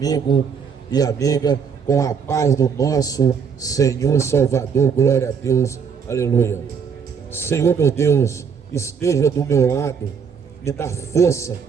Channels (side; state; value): left; quieter; 6.5 dB